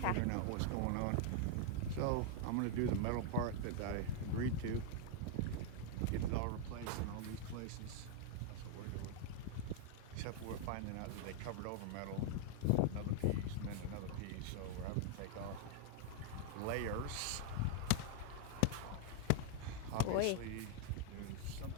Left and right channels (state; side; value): different; both; correlation 0.00